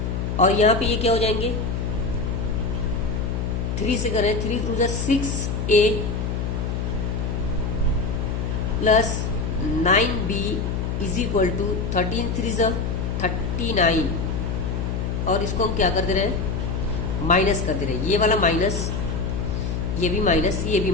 और यहाँ पे ये क्या हो जाएंगे, 3 से कर रहे हैं, 3 to 6a plus 9b is equal to 13 3 39। और इसको हम क्या कर दे रहे हैं, माइनस कर दे रहे हैं। ये वाला माइनस, ये भी माइनस, ये भी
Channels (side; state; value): left; noise; hum, 1 dB below the sound